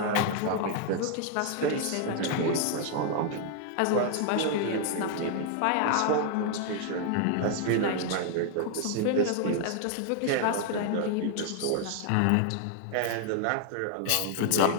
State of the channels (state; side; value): different; both; correlation 0.00